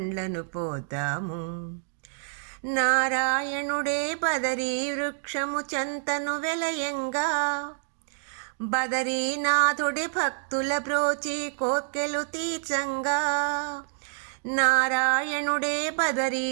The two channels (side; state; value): left; silent; digital silence